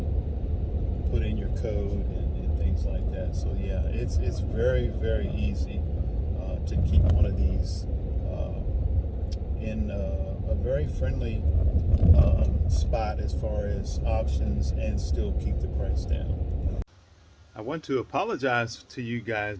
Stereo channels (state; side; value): identical; both; correlation 1.00